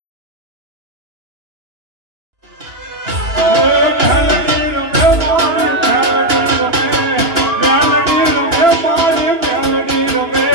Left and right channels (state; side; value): late; left; 2.9 ms